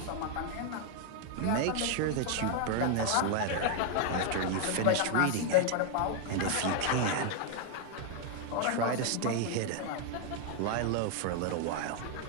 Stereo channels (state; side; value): different; both; correlation 0.00